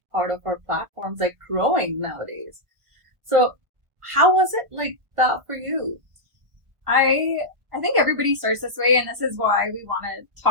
part of our platforms, like growing nowadays. So how was it like that for you? I think everybody starts this way, and this is why we want to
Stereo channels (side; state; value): left; late; 1.7 ms